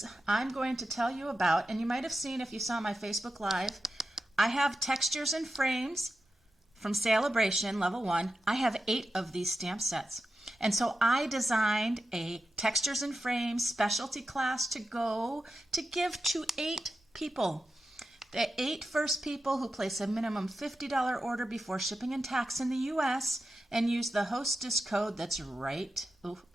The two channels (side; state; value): both; normal; correlation 0.90